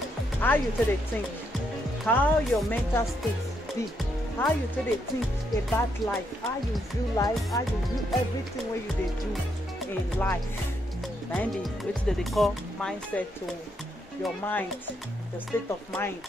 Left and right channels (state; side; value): normal; both; correlation 0.77